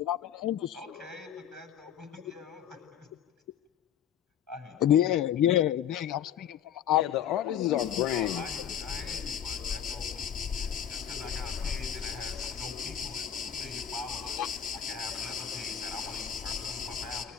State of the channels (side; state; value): right; quieter; 9.4 dB